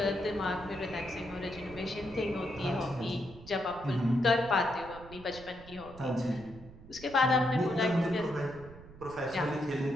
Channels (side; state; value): right; noise; rumble, 17 dB below the sound